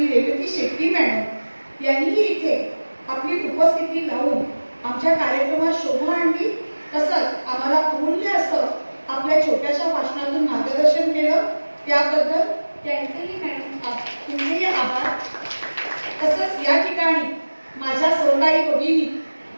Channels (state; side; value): inverted; both; correlation -1.00